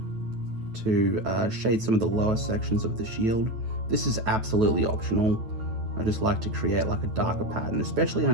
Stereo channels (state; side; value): late; left; 9.1 ms